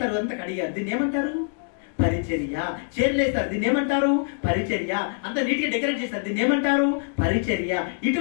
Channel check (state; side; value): silent; right; digital silence